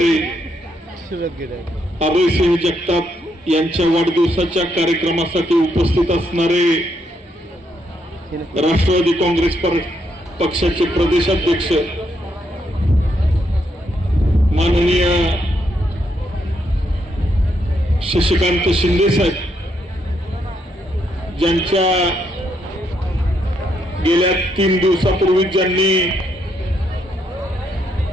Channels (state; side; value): normal; both; correlation 0.77